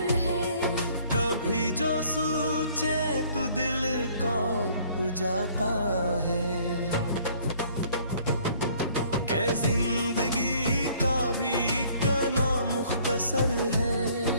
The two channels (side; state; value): both; inverted; correlation -0.58